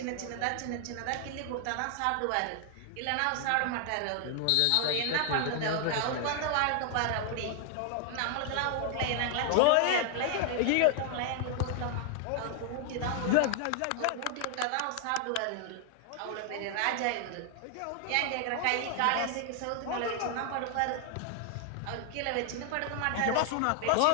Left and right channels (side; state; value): both; different; correlation 0.00